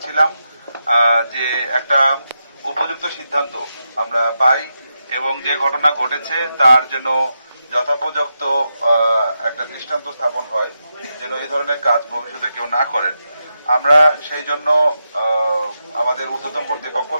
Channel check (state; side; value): inverted; both; correlation -0.87